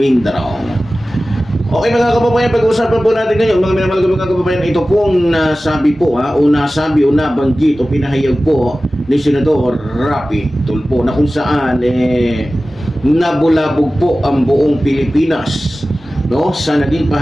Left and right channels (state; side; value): normal; both; correlation 0.96